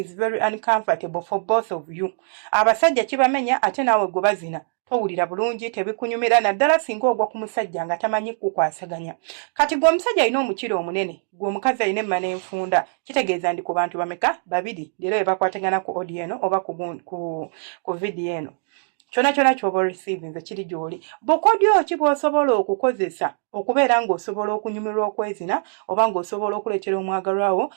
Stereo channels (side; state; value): left; silent; 58 dB below the other